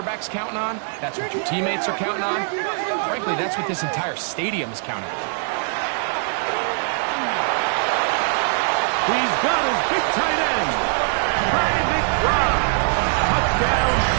counting on. That's what your teammates are counting on. Frankly, that's what this entire stadium is counting on. He's got his big tight end, Trey McBride. Touchdown,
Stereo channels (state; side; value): silent; left; 59 dB below the other